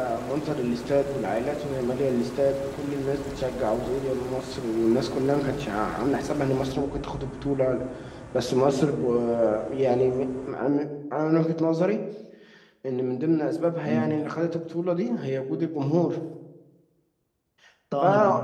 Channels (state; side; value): identical; both; correlation 1.00